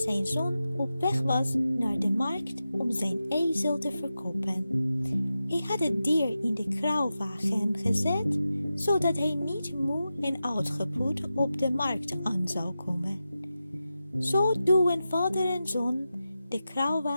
zoon op weg was naar de markt om zijn ezel te verkopen. Hij had het dier in de kruiwagen gezet, zodat hij niet moe en uitgeput op de markt aan zou komen. Zo duwen vader en zoon de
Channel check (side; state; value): both; inverted; correlation -0.91